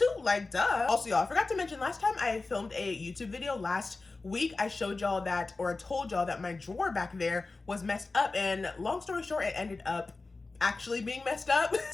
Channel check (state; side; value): quieter; right; 3.6 dB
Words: like duh. Also, y'all, I forgot to mention last time I filmed a YouTube video last week, I showed y'all that, or told y'all that my drawer back there was messed up, and long story short, it ended up actually being messed up.